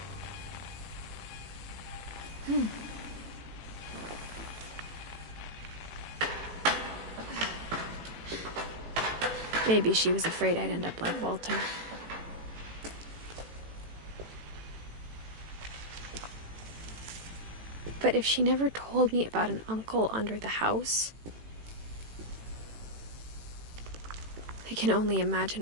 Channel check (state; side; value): late; left; 18 ms